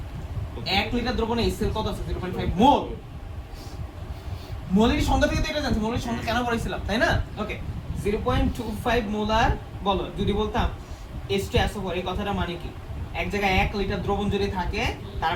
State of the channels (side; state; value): both; identical; correlation 1.00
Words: 1 লিটার দ্রবণে HCl কত আছে? 0.5 মোল। মোলের সংখ্যা থেকে তো এটা জানছি, মোলের সংখ্যা কেন পড়াইছিলাম, তাই না? ওকে, 0.25 মোলার বলো, যদি বলতাম H2SO4, এই কথাটা মানে কি? এক জায়গায় 1 লিটার দ্রবণ যদি থাকে, তার